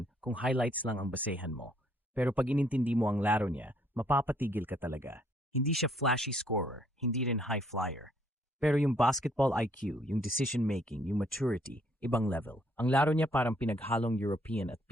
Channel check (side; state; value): both; normal; correlation 0.67